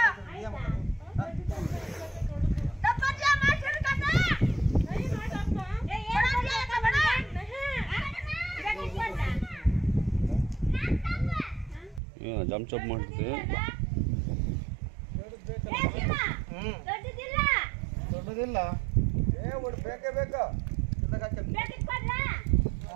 ಜಂಪ್ ಚಪ್ ಮಾಡ್ತೀವಿ ದೊಡ್ಡದಿಲ್ಲ ಬೇಕೇ ಬೇಕಾ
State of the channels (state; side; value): drops out; left; at 12.0 s